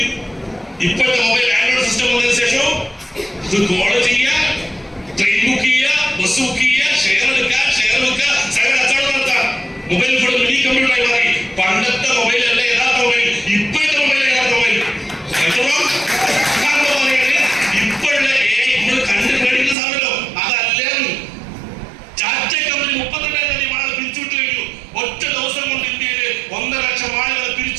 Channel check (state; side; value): drops out; left; at 19.8 s